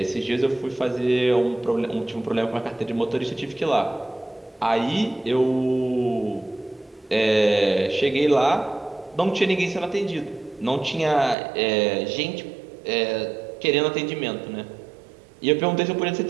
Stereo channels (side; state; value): left; drops out; at 11.4 s